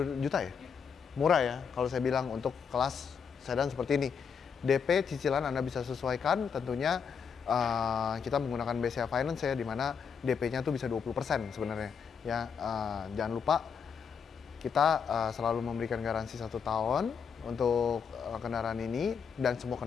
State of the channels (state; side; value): quieter; right; 6.6 dB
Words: juta ya? Murah ya, kalau saya bilang untuk kelas sedan seperti ini. DP cicilan Anda bisa sesuaikan, tentunya kita menggunakan BCA Finance ya, di mana DP-nya tuh bisa 20% sebenarnya. Ya, jangan lupa kita selalu memberikan garansi 1 tahun untuk kendaraan ini dan semua